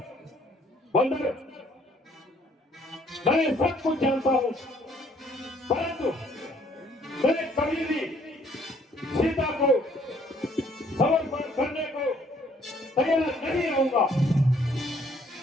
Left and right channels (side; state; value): both; normal; correlation 0.63